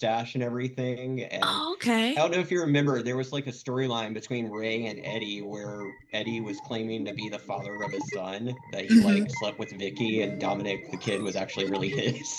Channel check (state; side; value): identical; both; correlation 1.00